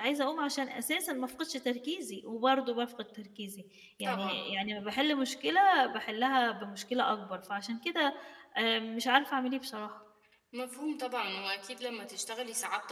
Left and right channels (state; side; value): identical; both; correlation 1.00